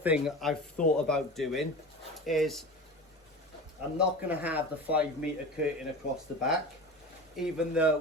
I've thought about doing is I'm not going to have the 5 meter curtain across the back, even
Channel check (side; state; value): both; normal; correlation 0.31